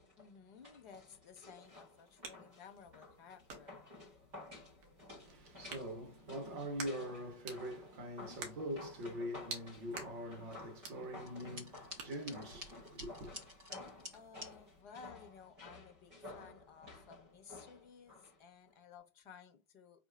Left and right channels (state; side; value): late; left; 5.3 ms